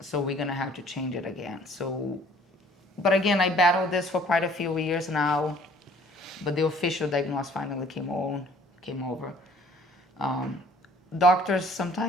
we're gonna have to change it again. So, but again, I battled this for quite a few years now, but the official diagnosis finally came over. Doctors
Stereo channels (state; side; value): normal; both; correlation 0.56